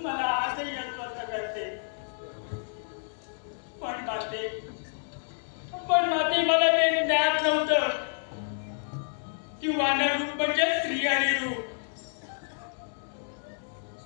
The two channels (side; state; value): right; silent; digital silence